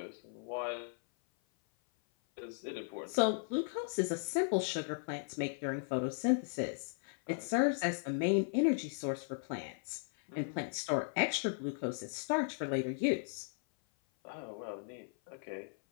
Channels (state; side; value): silent; right; 53 dB below the other